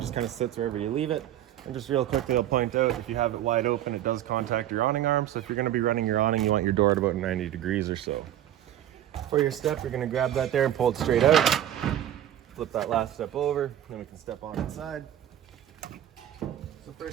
just kind of sits wherever you leave it. And just real quickly, I'll point out, if you have it wide open, it does contact your awning arm. So if you're gonna be running your awning, you want your door at about 90 degrees or so. For your step, you're gonna grab that there and pull it straight out. Flip that last step over, then we can step on inside. So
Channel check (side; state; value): left; quieter; 11.8 dB